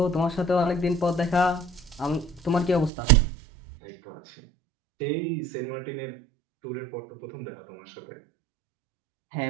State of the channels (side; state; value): left; drops out; at 2.9 s